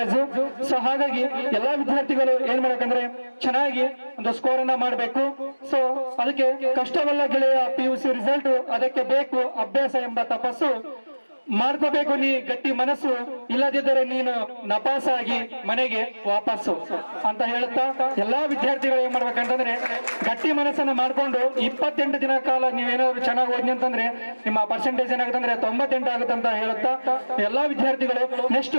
ಸೊ ಹಾಗಾಗಿ ಎಲ್ಲಾ ವಿದ್ಯಾರ್ಥಿಗಳು ಏನ್ ಮಾಡ್ಬೇಕಂದ್ರೆ ಚೆನ್ನಾಗಿ ಒಂದು ಸ್ಕೋರ್ ಅನ್ನ ಮಾಡಬೇಕು. ಸೊ ಅದಕ್ಕೆ ಕಷ್ಟವಲ್ಲ ಗೆಳೆಯ PUC ರಿಸಲ್ಟ್, ಅದಕ್ಕೆ ಬೇಕು ಅಭ್ಯಾಸ ಎಂಬ ತಪಸ್ಸು. ಮಾಡ್ಕೋಬೇಕು ನೀ ಗಟ್ಟಿ ಮನಸ್ಸು, ಇಲ್ಲದಿದ್ದರೆ ನೀನು ನಪಾಸಾಗಿ ಮನೆಗೆ ವಾಪಸ್ಸು ಅಂತ ಹೇಳುತ್ತಾ ಎಲ್ಲಾ ವಿದ್ಯಾರ್ಥಿಗಳು ಏನ್ ಮಾಡ್ಬೇಕಂತಂದ್ರೆ ಗಟ್ಟಿ ಮನಸ್ಸನ್ನ ಮಾಡ್ಕೊಂಡು 28 ದಿನ ಕಾಲ ನೀವೇನಾದ್ರು ಚೆನ್ನಾಗಿ ಓದಿ ಅಂತಂದ್ರೆ ನಿಮ್ಮ ಪರ್ಸೆಂಟೇಜ್ ಏನಾಗುತ್ತಂದ್ರೆ 98 ಆಗುತ್ತೆ ಅಂತ ಹೇಳುತ್ತಾ ಎಲ್ಲಾ ವಿದ್ಯಾರ್ಥಿಗಳು ನೆಕ್ಸ್ಟ್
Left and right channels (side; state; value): both; inverted; correlation -1.00